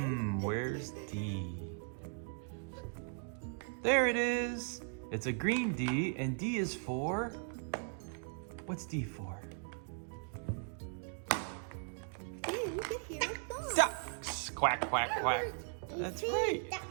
Where's D? There it is. It's a green D, and D is for? What's D for? Then you hear a song. Ducks. Quack, quack, quack. That's right.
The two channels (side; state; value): left; silent; 52 dB below the other